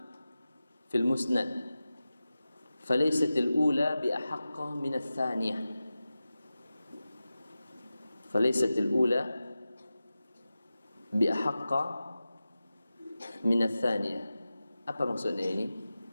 fil Musnad. Falaysat al-ula bi ahaqqa min ats-tsaniyah. Falaysat al-ula bi ahaqqa min ats-tsaniyah. Apa maksudnya ini?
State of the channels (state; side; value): inverted; both; correlation -0.94